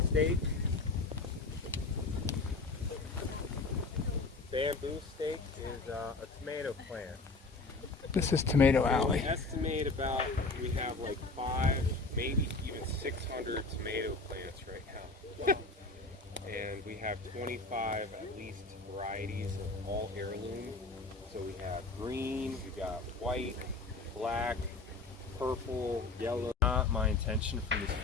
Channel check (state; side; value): quieter; right; 3.6 dB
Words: stake, is a tomato plant. This is Tomato We Alley. estimate we have like 5, maybe even 600 tomato plants right now. And we have 25 at least varieties of all heirloom. So we have green, we got white, black, purple, yellow. Not my intention for this